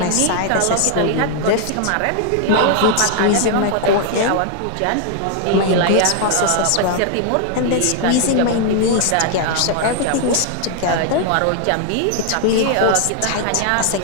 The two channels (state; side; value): different; both; correlation 0.00